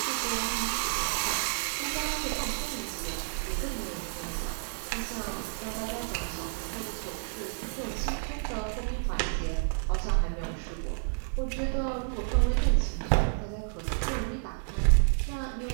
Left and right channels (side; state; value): left; silent; digital silence